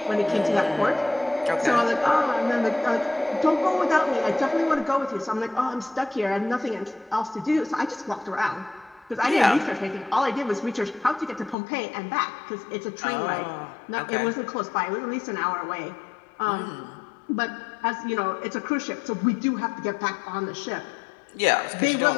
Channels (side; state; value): right; drops out; at 11.6 s